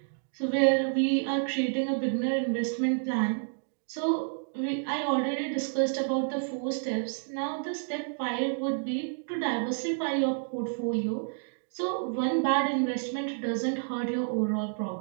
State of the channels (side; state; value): left; silent; digital silence